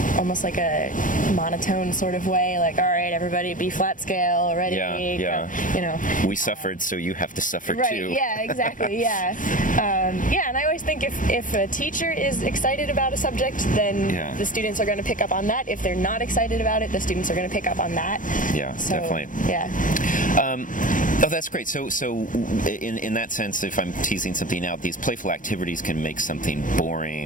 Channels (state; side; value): late; right; 0.38 ms